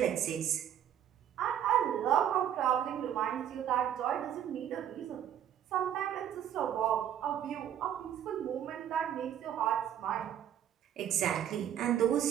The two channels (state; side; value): quieter; left; 10.1 dB